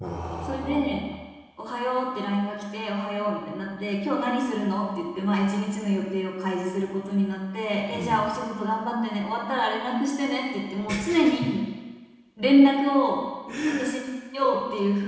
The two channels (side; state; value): both; identical; correlation 1.00